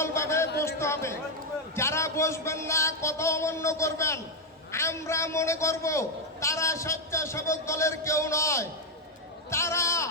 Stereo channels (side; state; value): both; normal; correlation 0.03